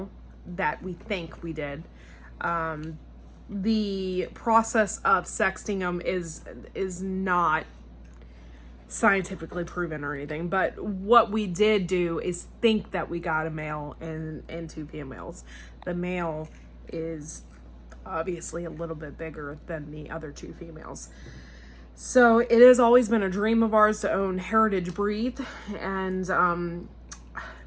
that we think we did. The process of sexting them is not scientifically proven or anything, but what we did do is think that we got a male and 2 females. The male is obviously a little bit bigger than the other 2 females. So it has always been a dream of ours to own heritage breed, and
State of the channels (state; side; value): identical; both; correlation 1.00